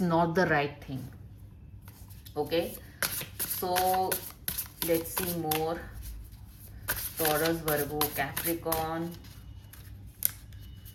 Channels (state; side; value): identical; both; correlation 1.00